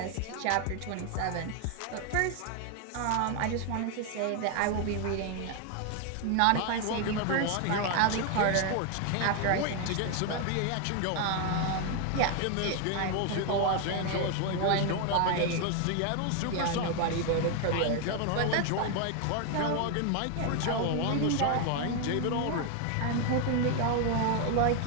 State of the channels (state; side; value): different; both; correlation 0.01